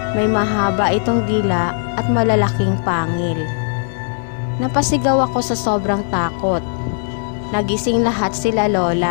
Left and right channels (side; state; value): right; silent; digital silence